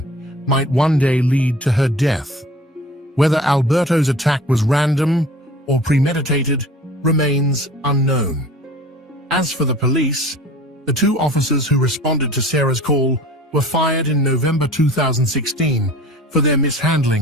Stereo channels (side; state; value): both; normal; correlation 0.44